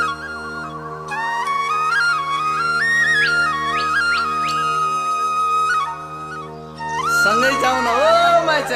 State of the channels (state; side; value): identical; both; correlation 1.00